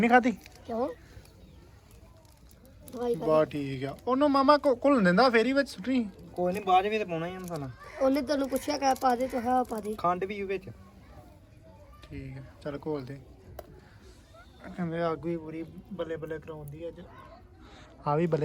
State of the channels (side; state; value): both; identical; correlation 1.00